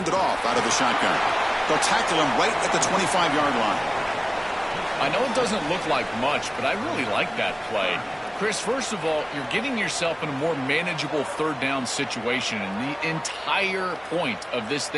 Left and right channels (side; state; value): both; identical; correlation 1.00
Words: off out of the shotgun. They'll tackle him right at the 25-yard line. I know it doesn't look like much, but I really like that play. Chris, first of all, you're getting yourself in a more manageable third down situation, and the entire point of this